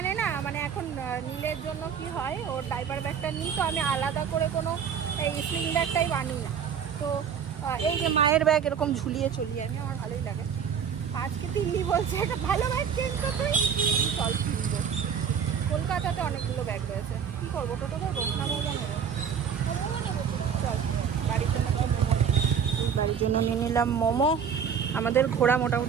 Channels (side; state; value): left; quieter; 7.3 dB